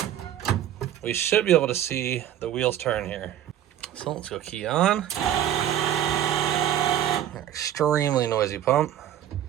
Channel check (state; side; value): quieter; left; 11.2 dB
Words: we should be able to see the wheels turn here. So let's go key on. Extremely noisy pump.